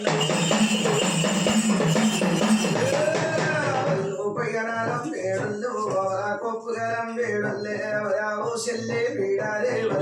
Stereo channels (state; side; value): identical; both; correlation 1.00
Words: పయ్యనాలం వేడుళ్ళు కొప్పుగలం వేడుల్లే ఓ చెల్లె పీడాలే